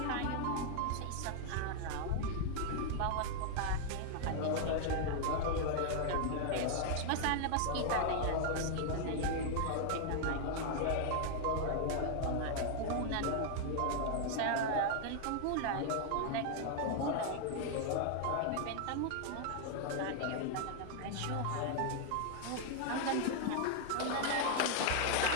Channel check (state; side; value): different; both; correlation 0.00